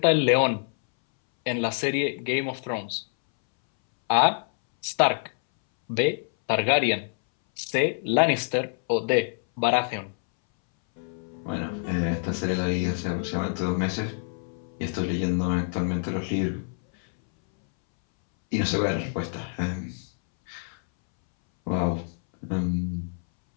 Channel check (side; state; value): right; silent; 61 dB below the other